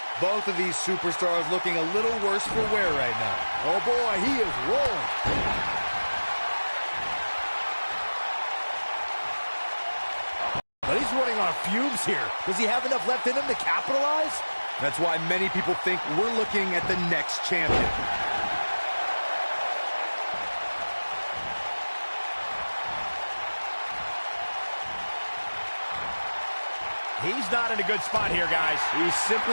Both of these superstars looking a little worse for wear right now. Oh boy, he is rolling. But he's running on fumes here. Does he have enough left in him to capitalize? That's why many people think we're looking at the next champion. He's not in a good spot here, guys. He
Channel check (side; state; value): both; inverted; correlation -1.00